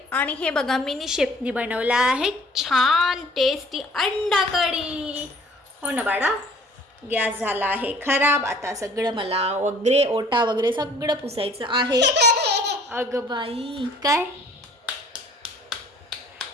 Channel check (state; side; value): normal; both; correlation 0.54